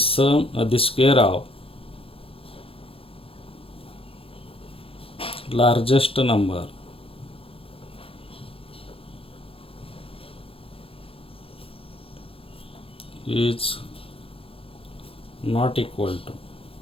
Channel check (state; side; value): late; right; 0.27 ms